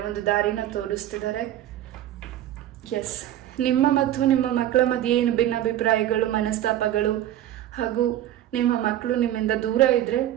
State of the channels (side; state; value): left; quieter; 12.6 dB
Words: ಒಂದು ದಾರಿನ ತೋರಿಸ್ತಿದ್ದಾರೆ. ಎಸ್, ನಿಮ್ಮ ಮತ್ತು ನಿಮ್ಮ ಮಕ್ಕಳ ಮಧ್ಯೆ ಏನು ಭಿನ್ನಾಭಿಪ್ರಾಯಗಳು, ಮನಸ್ತಾಪಗಳು ಹಾಗೂ ನಿಮ್ಮ ಮಕ್ಕಳು ನಿಮ್ಮಿಂದ ದೂರ ಇದ್ರೆ